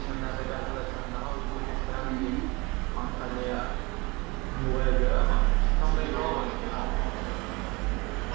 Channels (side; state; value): left; quieter; 25.7 dB